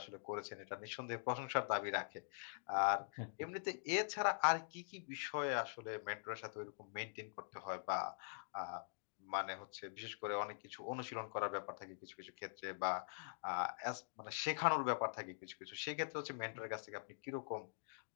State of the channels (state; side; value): silent; right; digital silence